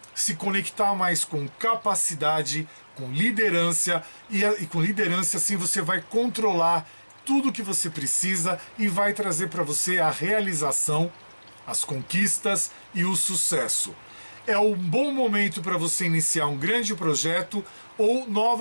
se conectar mais com capacidade, com liderança, e com liderança assim você vai controlar tudo que você precisa e vai trazer para você a realização, as conquistas e o sucesso. É um bom momento para você iniciar um grande projeto ou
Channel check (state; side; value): inverted; both; correlation -1.00